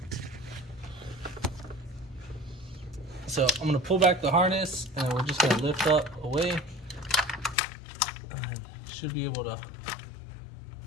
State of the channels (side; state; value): right; drops out; at 7.6 s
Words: So I'm gonna pull back the harness and we're just gonna lift up away. Should be able to